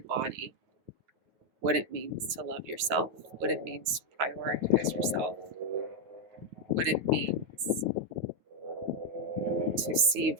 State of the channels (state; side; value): late; left; 9.3 ms